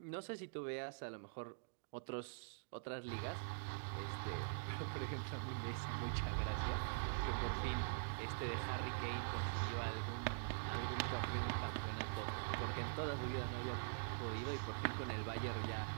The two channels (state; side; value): silent; left; digital silence